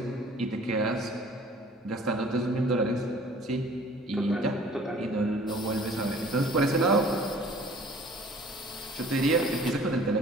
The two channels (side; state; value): both; normal; correlation 0.51